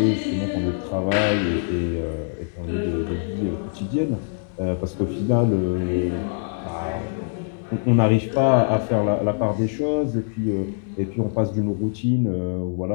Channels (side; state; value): right; silent; digital silence